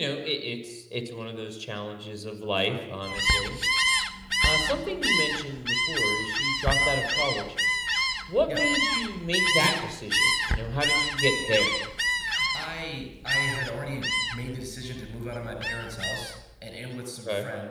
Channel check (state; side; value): identical; both; correlation 1.00